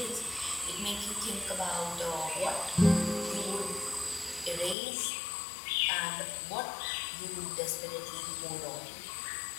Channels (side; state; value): right; drops out; at 4.8 s